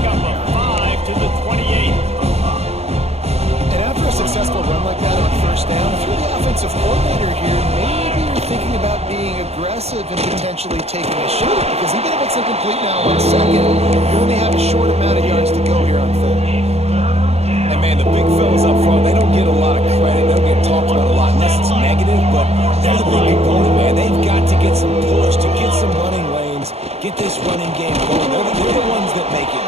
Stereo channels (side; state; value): left; late; 0.30 ms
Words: up a 5 to the 28. And after a successful run like that on first down, if you're the offensive coordinator here, maybe you're thinking about being aggressive and potentially taking a shot, because even if it's incomplete now on second, you only have a short amount of yards to go here on third. And man, the big fellas up front, they don't get a lot of credit. They don't get talked about a lot unless it's negative, but they're the big component, man. They've got to get some push, to get some running lanes, get this running game going. They're the ones that make it